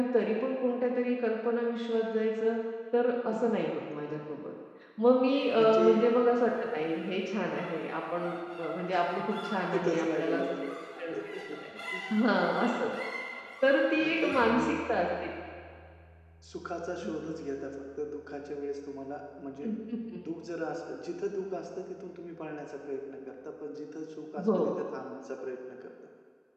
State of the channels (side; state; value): both; identical; correlation 1.00